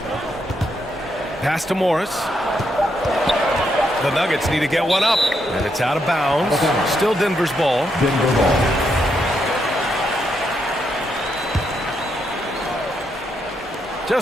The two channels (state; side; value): normal; both; correlation 0.79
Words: Pass to Morris. The Nuggets need to get one up, and it's out of bounds. Still Denver's ball.